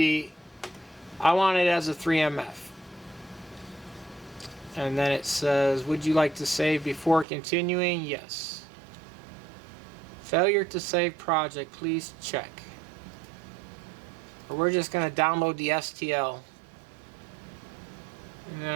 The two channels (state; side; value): drops out; left; at 7.2 s